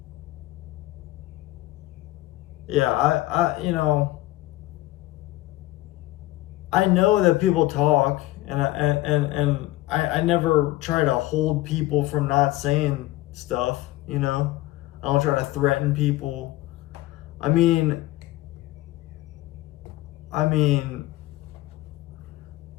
yeah, I know that people talk, and I never try to hold people from not saying stuff, I don't try to threaten people. I mean,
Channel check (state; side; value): quieter; right; 17.1 dB